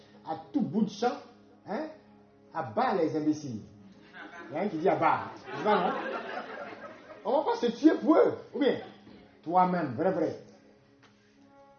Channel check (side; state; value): both; identical; correlation 1.00